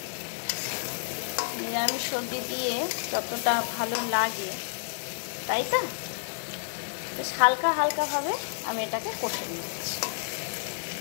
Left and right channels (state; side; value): silent; right; digital silence